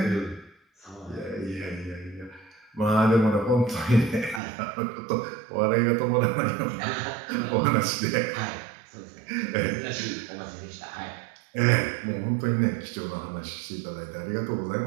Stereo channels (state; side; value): drops out; left; at 4.4 s